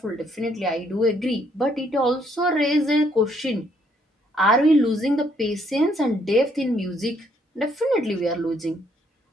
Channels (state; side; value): normal; both; correlation 0.69